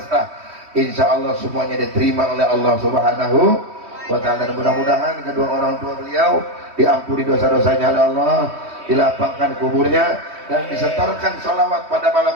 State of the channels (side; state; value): left; late; 3.2 ms